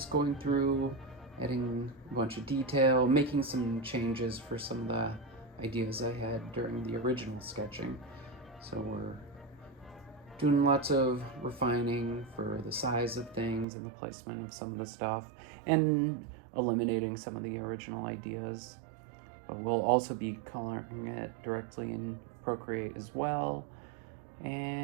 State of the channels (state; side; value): drops out; left; at 13.7 s